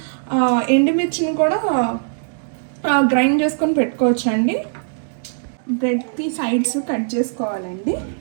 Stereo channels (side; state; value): left; silent; digital silence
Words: ఎండుమిర్చిని కూడా గ్రైండ్ చేసుకొని పెట్టుకోవచ్చు అండి. బ్రెడ్కి సైడ్స్ కట్ చేసుకోవాలండి.